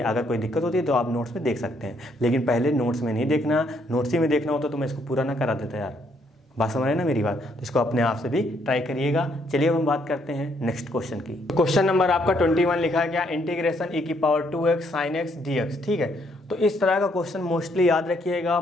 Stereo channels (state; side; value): normal; both; correlation 0.71